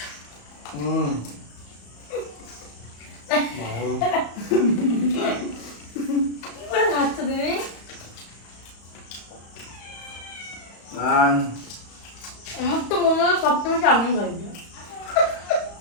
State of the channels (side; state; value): right; late; 35 ms